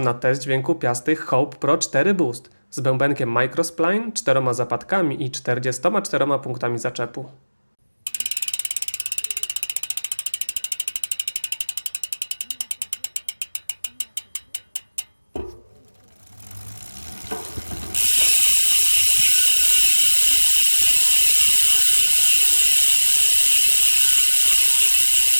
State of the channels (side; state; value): both; inverted; correlation -1.00